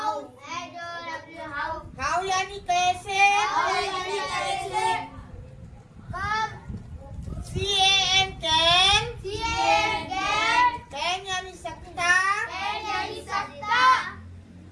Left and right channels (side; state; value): both; identical; correlation 1.00